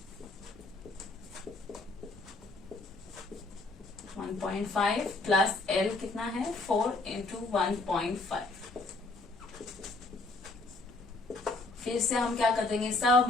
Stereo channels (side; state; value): right; quieter; 3.2 dB